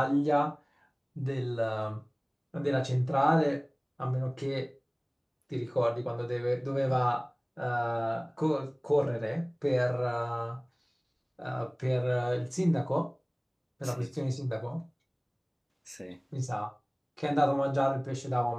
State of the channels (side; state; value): both; identical; correlation 1.00